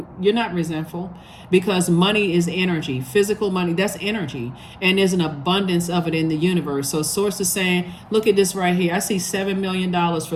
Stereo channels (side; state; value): both; identical; correlation 1.00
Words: You're not resentful. Because money is energy, physical money, that's energy. And there's an abundance of it in the universe. So source is saying, look at this right here. I see $7 million